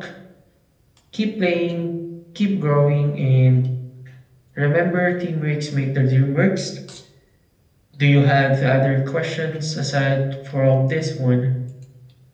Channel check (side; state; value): both; identical; correlation 1.00